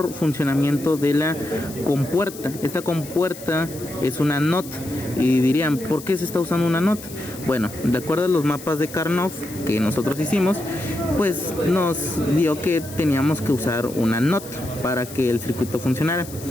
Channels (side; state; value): left; noise; hiss, 15 dB below the sound